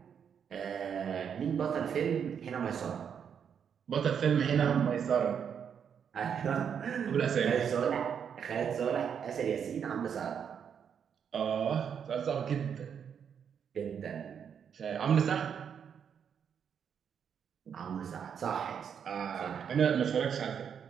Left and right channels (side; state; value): left; quieter; 7.6 dB